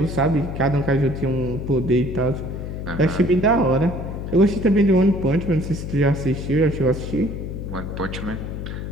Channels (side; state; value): left; noise; hum, 6 dB below the sound